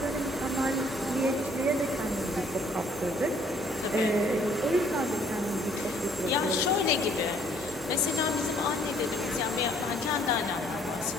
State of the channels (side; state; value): both; normal; correlation 0.62